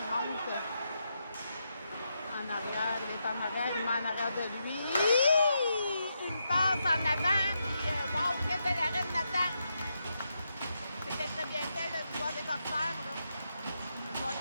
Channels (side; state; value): both; inverted; correlation -0.83